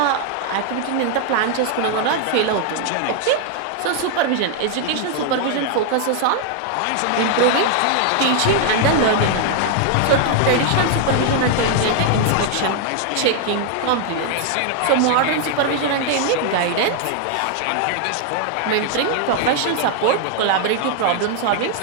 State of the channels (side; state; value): both; different; correlation 0.00